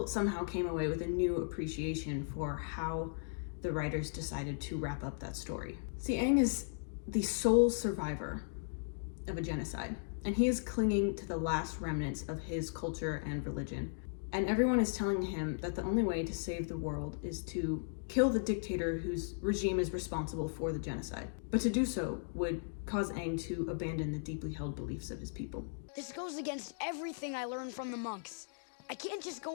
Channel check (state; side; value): silent; right; digital silence